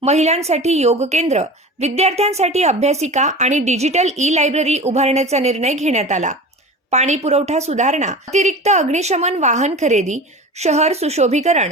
महिलांसाठी योग केंद्र, विद्यार्थ्यांसाठी अभ्यासिका आणि डिजिटल ई-लायब्ररी उभारण्याचा निर्णय घेण्यात आला। पाणी पुरवठा सुधारणा, अतिरिक्त अग्निशमन वाहन खरेदी, शहर सुशोभीकरण,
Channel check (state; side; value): normal; both; correlation 0.34